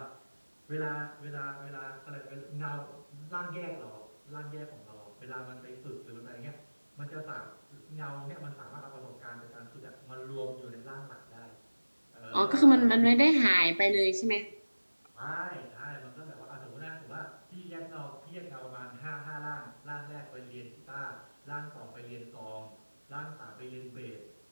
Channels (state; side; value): inverted; both; correlation -1.00